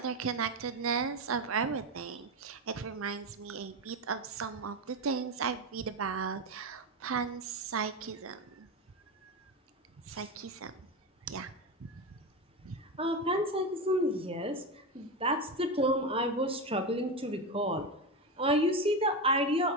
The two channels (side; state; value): both; normal; correlation 0.17